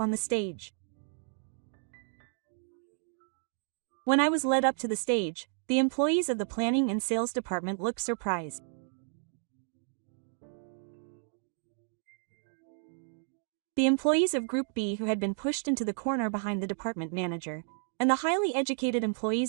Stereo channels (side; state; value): left; silent; 56 dB below the other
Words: the stage. When I was led up to the stage, the employees of the planning and sales department looked surprised. The employees of Group B who had been pushed into the corner behind the department manager, and the highly educated